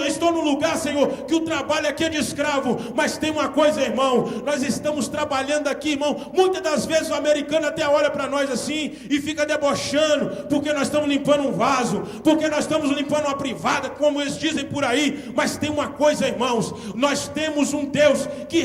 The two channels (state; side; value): identical; both; correlation 1.00